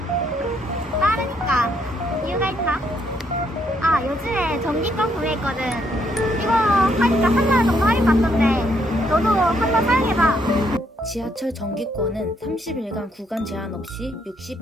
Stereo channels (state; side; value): normal; both; correlation 0.73